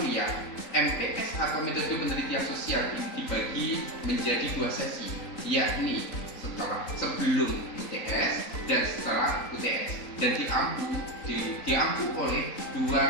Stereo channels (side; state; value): right; late; 3.8 ms